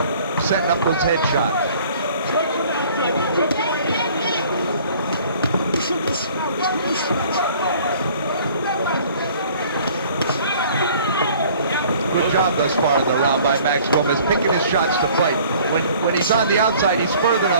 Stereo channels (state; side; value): inverted; both; correlation -0.53